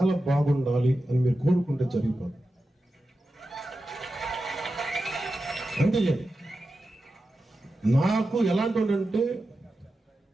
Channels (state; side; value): normal; both; correlation 0.91